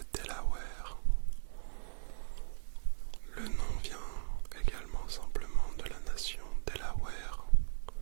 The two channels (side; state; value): left; silent; 53 dB below the other